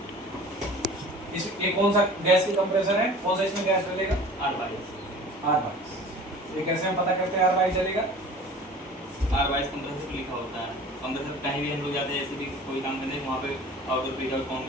इस ये कौन सा गैस की कंप्रेसर है? कौन सा इसमें गैस डलेगा? R22। ये कैसे हम पता करते हैं R22 जलेगा? R22 कंप्रेसर पे लिखा होता है। कंप्रेसर कहीं भी हम लोग जाते हैं, ऐसे भी कोई काम करते हैं, वहाँ पे आउटडोर पे कौन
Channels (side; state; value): both; normal; correlation 0.43